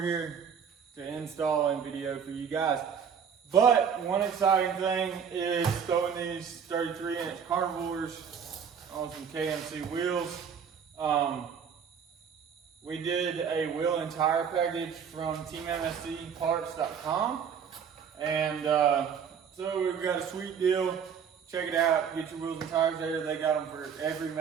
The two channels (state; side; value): quieter; left; 7.2 dB